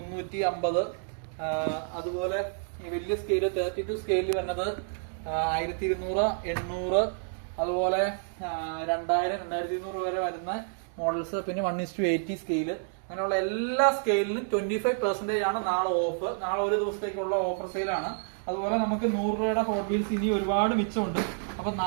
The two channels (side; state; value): left; silent; digital silence